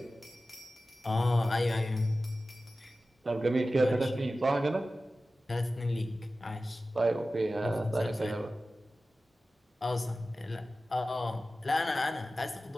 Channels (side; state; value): both; normal; correlation 0.95